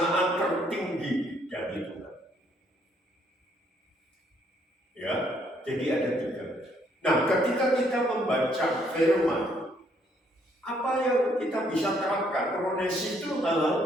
tertinggi dari Tuhan. Ya, jadi ada tiga. Nah, ketika kita membaca firman, apa yang kita bisa terapkan? Kronesis itu hal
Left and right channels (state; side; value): normal; both; correlation 0.68